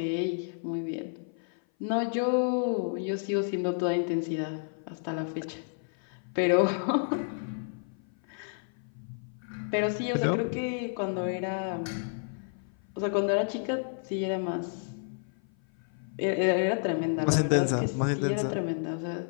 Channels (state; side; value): silent; right; 55 dB below the other